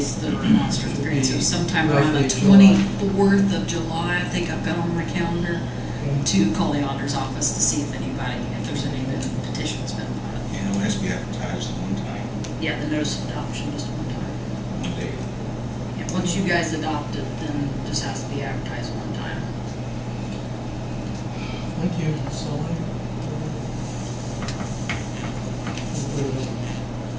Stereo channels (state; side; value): identical; both; correlation 1.00